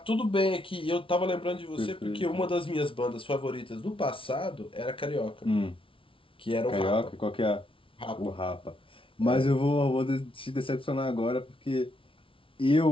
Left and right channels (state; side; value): late; right; 0.25 ms